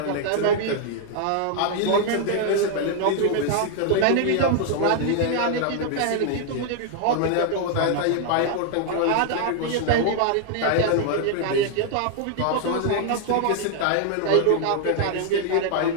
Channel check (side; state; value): both; different; correlation 0.00